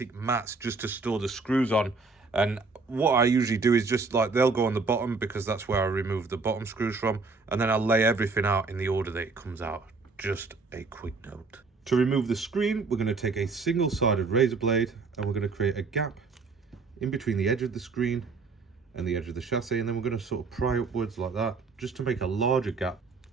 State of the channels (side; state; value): left; quieter; 4.2 dB